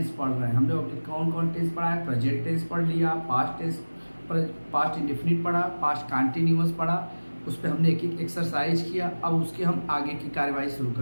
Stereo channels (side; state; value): both; inverted; correlation -1.00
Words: पढ़ रहे हैं। हम लोग अभी कौन कौन टेंस पढ़ा है? प्रेजेंट टेंस पढ़ लिया, पास्ट टेंस, पास्ट इंडेफिनिट पढ़ा, पास्ट कंटिन्यूअस पढ़ा, उस पर हमने एक एक एक्सरसाइज किया। अब उसके हम आगे की कार्यवाही शुरू